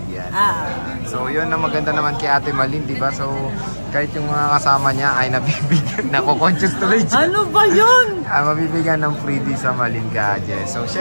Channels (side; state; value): both; inverted; correlation -1.00